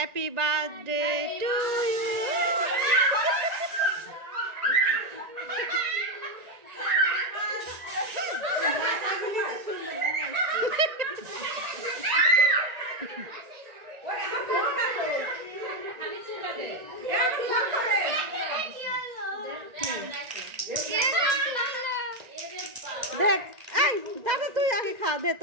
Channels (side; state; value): left; late; 1.9 ms